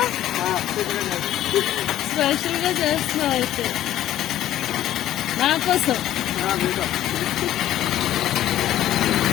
Special ga chestunava aithe. Na kosam.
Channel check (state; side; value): quieter; right; 12.9 dB